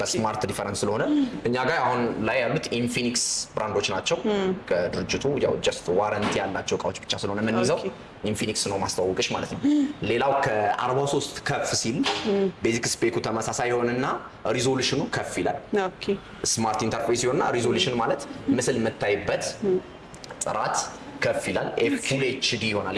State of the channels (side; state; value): both; identical; correlation 1.00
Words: በስማርት ዲፈረንስ ስለሆነ እኛ ጋር አሁን ላይ ያሉት ኢንፊኒክስ ብራንዶች ናቸው። ከድርጅቱ ያው ጀስት ዋረንቲ ያላቸው እቃዎች ብቻ ስለሆነ የምንይዘው ኢንፊኒክስ ነው ማስተዋወቅሽ ማለት ነው። ሌላው ከ43 ከፍ ሲል ቤዚክ ስፔኩ ተመሳሳይ ይሆንና ሪዞሉሽኑ ከፍ ይላል። ስማርት ኢንተርፌስ ይሆንና ሪዞሉሽን ማለት ምስል የምታይበት ጥራት ከፍ ይላል። ፉል ኤችዲ ይሆናል